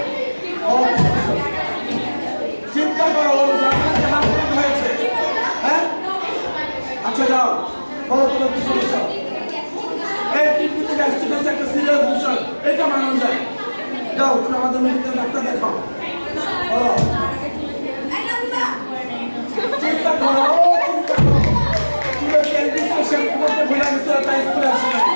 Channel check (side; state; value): both; inverted; correlation -1.00